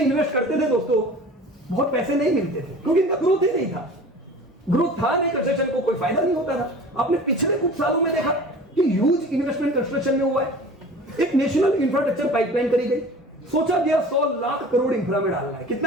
इन्वेस्ट करते थे दोस्तों, बहुत पैसे नहीं मिलते थे क्योंकि इनका ग्रोथ ही नहीं था। ग्रोथ था नहीं, कंस्ट्रक्शन को कोई फायदा नहीं होता था। आपने पिछले कुछ सालों में देखा कि ह्यूज इन्वेस्टमेंट कंस्ट्रक्शन में हुआ है। एक नेशनल इंफ्रास्ट्रक्चर पाइपलाइन करी गई, सोचा गया 100 लाख करोड़ इंफ्रा में डालना है।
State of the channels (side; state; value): both; normal; correlation 0.41